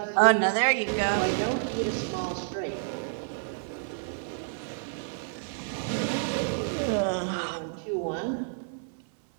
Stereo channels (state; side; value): silent; left; 58 dB below the other